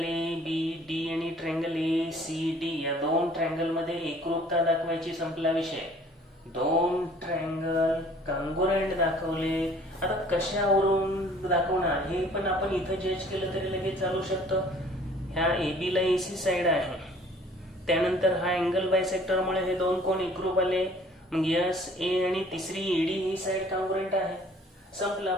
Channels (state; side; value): normal; both; correlation 0.54